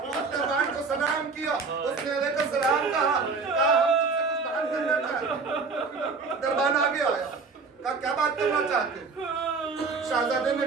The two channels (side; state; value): left; quieter; 4.6 dB